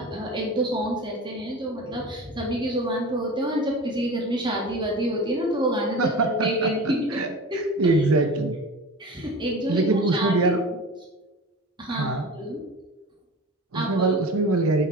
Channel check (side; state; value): both; normal; correlation 0.33